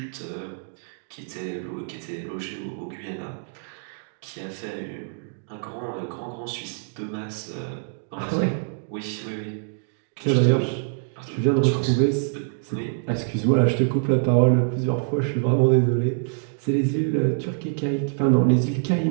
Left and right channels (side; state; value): left; silent; digital silence